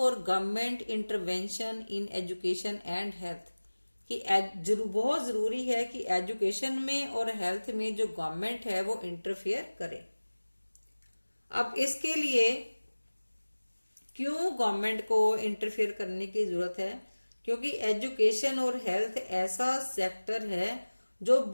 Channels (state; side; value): inverted; both; correlation -1.00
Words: government intervention in education and health. कि बहुत जरूरी है कि एजुकेशन में और हेल्थ में जो गवर्नमेंट है वो इंटरफेयर करे। अब इसके लिए क्यों गवर्नमेंट को इंटरफेयर करने की जरूरत है? क्योंकि एजुकेशन और हेल्थ ऐसा सेक्टर है जो